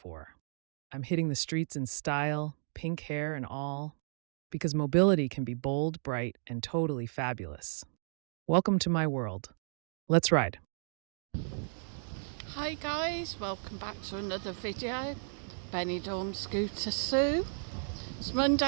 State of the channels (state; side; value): silent; left; digital silence